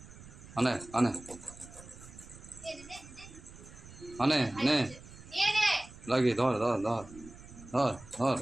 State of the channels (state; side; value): noise; right; rumble, 18 dB below the sound